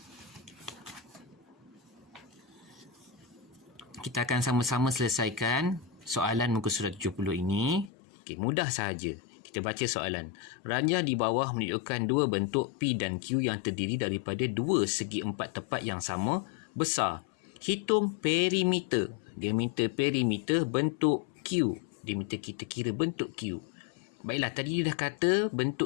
Kita akan sama-sama selesaikan soalan muka surat 70 ini. Okey, mudah sahaja. Kita baca soalan. Ranjah di bawah menunjukkan dua bentuk P dan Q yang terdiri daripada dua segi empat tepat yang sama besar. Hitung perimeter. Dia minta perimeter bentuk Q. Dia minta kita kira bentuk Q. Baiklah, tadi dia dah kata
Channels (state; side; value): drops out; right; at 7.9 s